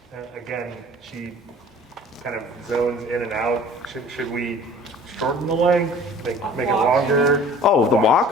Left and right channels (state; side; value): normal; both; correlation 0.47